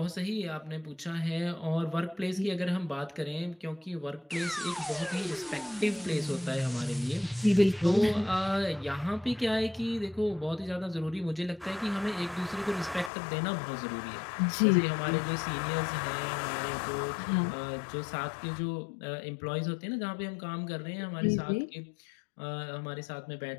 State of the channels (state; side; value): drops out; right; at 13.1 s